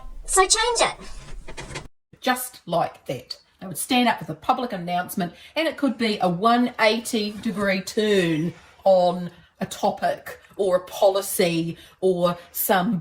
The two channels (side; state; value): both; identical; correlation 1.00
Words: so change it. Just like that. They would stand up with a public announcement, and it could be a 180-degree turn on a topic or a policy or some